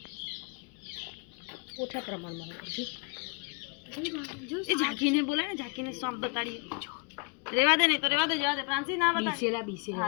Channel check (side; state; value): right; quieter; 31.6 dB